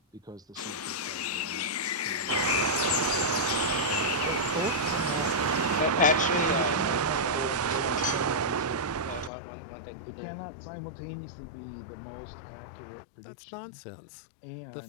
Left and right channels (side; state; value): right; drops out; at 9.3 s